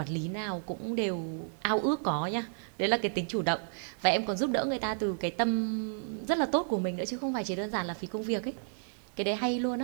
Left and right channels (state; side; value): silent; left; digital silence